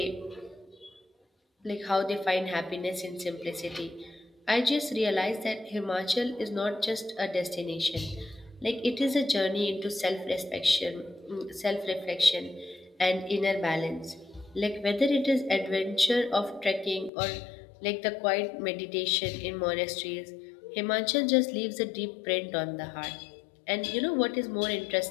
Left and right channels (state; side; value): drops out; right; at 17.1 s